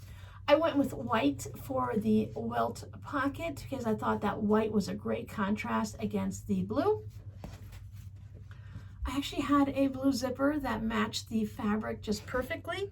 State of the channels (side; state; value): both; identical; correlation 1.00